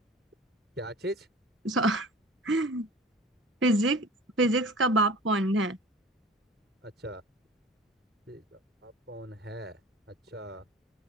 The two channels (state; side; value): normal; both; correlation 0.41